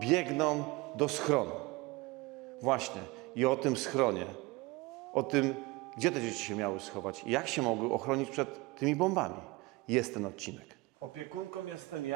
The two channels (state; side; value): quieter; left; 22.8 dB